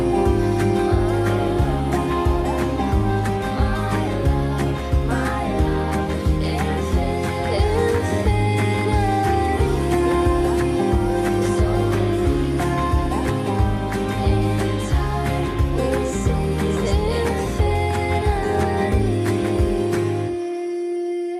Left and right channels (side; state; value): both; identical; correlation 1.00